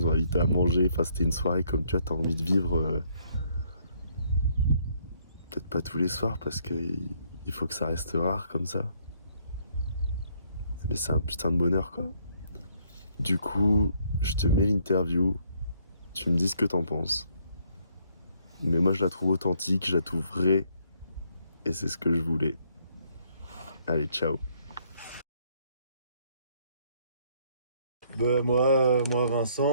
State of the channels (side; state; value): both; inverted; correlation -0.68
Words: ont invités à manger. Enfin, c'était une soirée comme tu vois, t'as envie de vivre. Peut-être pas tous les soirs parce qu'il faut que ça reste rare comme ça. Mais c'est un putain de bonheur, quoi. Du coup, je te mets l'interview. Tu me dis ce que t'en penses. Mais moi, je la trouve authentique, je la trouve vraie. Et c'est ce que je voulais. Allez, ciao. Moi